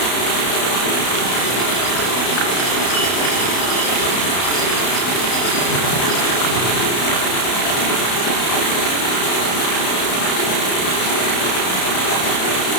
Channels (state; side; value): late; right; 32 ms